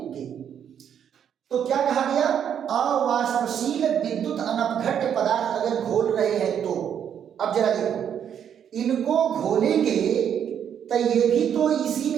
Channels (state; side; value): quieter; left; 8.8 dB